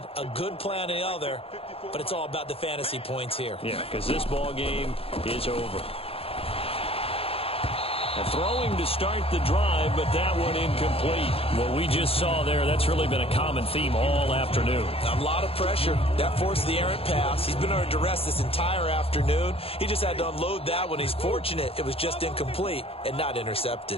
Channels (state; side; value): late; right; 0.28 ms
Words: a good play on the other, but it's all about the fantasy points here. Yeah, because this ball game is over. Throwing to start the drive, but that one incomplete. What we just saw there, that's really been a common theme all afternoon. A lot of pressure. That forced the errant pass. He's been under duress this entire afternoon. He just had to unload that one. He's fortunate it was just incomplete and not